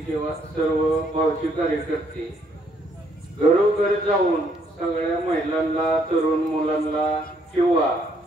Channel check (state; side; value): normal; both; correlation 0.69